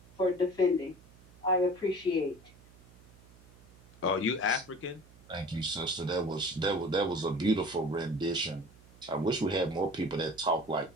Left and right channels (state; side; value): noise; right; hum, 25 dB below the sound